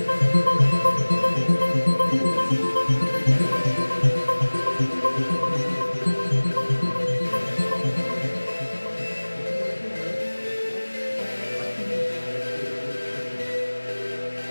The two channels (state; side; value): inverted; both; correlation -1.00